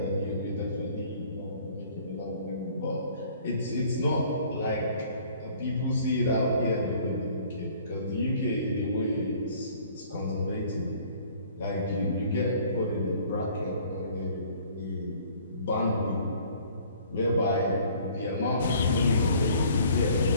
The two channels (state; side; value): inverted; both; correlation -0.55